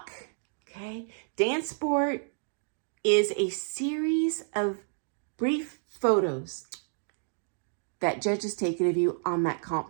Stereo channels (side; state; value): left; silent; digital silence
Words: Okay, Dancesport is a series of brief photos that judges taken of you on that comp